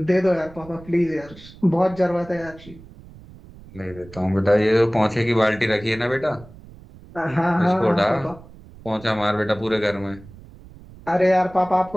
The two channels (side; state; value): right; noise; rumble, 20 dB below the sound